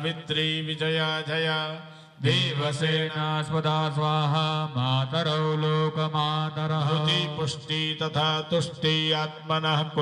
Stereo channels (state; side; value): identical; both; correlation 1.00